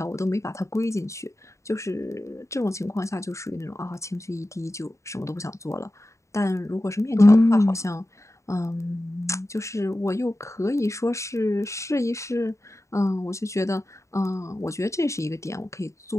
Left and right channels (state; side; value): late; right; 0.14 ms